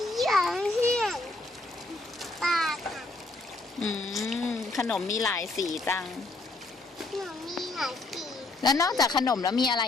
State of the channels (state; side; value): quieter; right; 3.0 dB